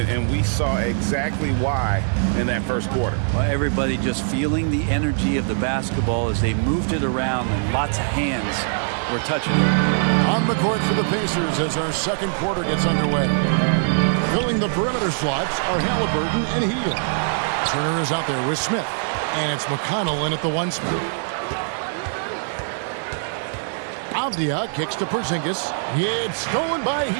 we saw exactly why in that first quarter. Well, everybody just feeling the energy of the basketball as they moved it around, and lots of hands were touching it. On the court for the Pacers as our second quarter gets underway. Filling the perimeter slots are Halliburton and Hill. Turner is out there with Smith, and it's McConnell in at the 1 spot. Avdia kicks to Porzingis. It's stolen by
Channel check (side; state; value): left; silent; digital silence